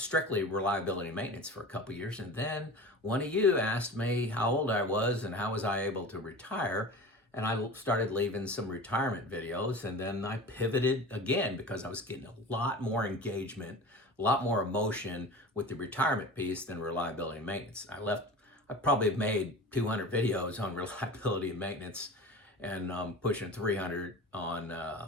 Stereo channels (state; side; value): normal; both; correlation 0.35